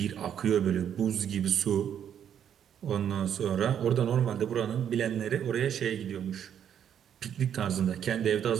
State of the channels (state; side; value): quieter; left; 9.1 dB